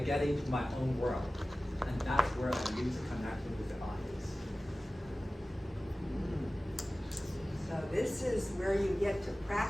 into my own world. And that's where I lose the connection with the audience. So this is where you get to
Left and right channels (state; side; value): normal; both; correlation 0.96